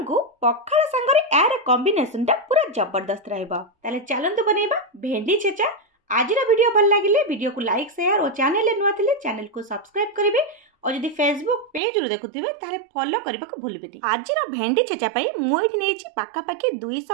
को पखाल संगरे यार कॉम्बिनेशन टा पूरा जबरदस्त रहबा। ताले चलंतु बनेबा भेंडी छेचा। आजिरा वीडियो भल लागिले वीडियो को लाइक शेयर और चैनल नुआ थिले चैनल को सब्सक्राइब करिवे और यदि फेसबुक पेज रो देखुथिबे ताले फॉलो करबा को भूलबेनी। आजिरा भेंडी छेचा पई मु एठी नेछि पाका पाकी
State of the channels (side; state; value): left; drops out; at 11.8 s